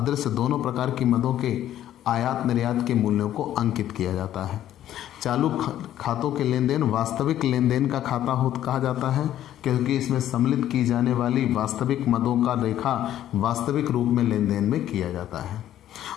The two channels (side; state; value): right; quieter; 12.0 dB